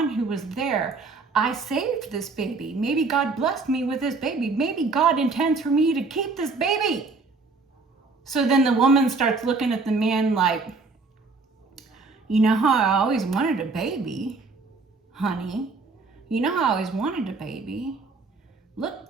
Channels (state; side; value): quieter; left; 4.0 dB